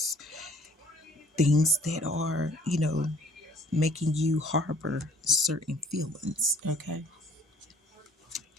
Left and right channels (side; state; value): both; normal; correlation 0.56